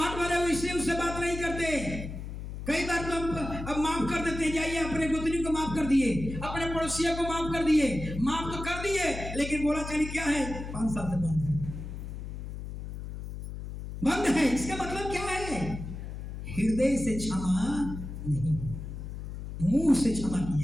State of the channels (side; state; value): left; noise; hum, 8 dB below the sound